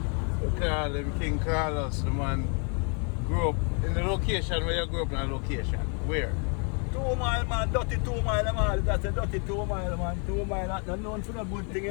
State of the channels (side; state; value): right; quieter; 37.9 dB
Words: him King Carlos, the man grew up in the location where you grew up in a location. Where? 2 mile, man, dirty 2 mile, man. That's a dirty 2 mile, man. 2 mile, that's not known for a good thing,